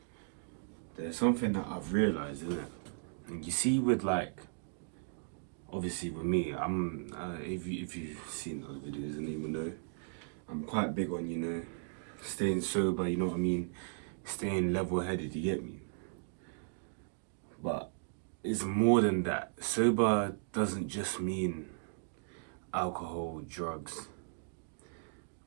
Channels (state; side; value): silent; left; digital silence